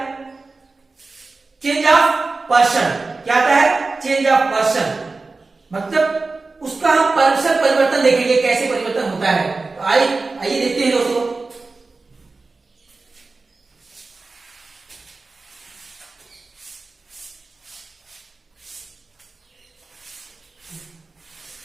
चेंज ऑफ पर्सन। क्या आता है, चेंज ऑफ पर्सन, मतलब उसका हम पर्सन परिवर्तन देखेंगे, कैसे परिवर्तन होता है। तो आइए देखते हैं दोस्तों।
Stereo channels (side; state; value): left; quieter; 3.7 dB